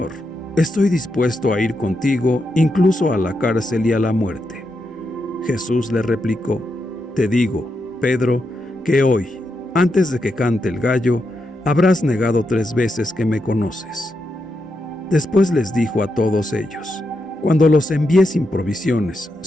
estoy dispuesto a ir contigo incluso a la cárcel y a la muerte». Jesús le replicó: «Te digo, Pedro, que hoy, antes de que cante el gallo, habrás negado 3 veces que me conoces». Después les dijo a todos ellos: «Cuando los envié sin provisiones,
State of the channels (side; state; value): both; normal; correlation 0.84